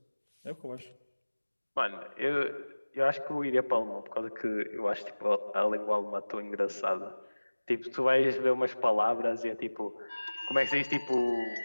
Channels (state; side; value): inverted; both; correlation -1.00